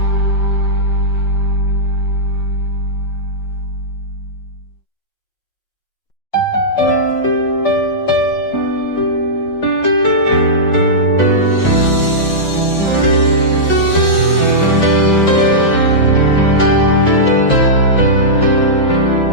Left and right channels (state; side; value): late; right; 5.5 ms